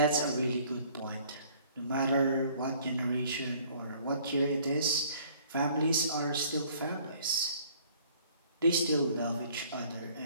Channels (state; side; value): inverted; both; correlation -0.57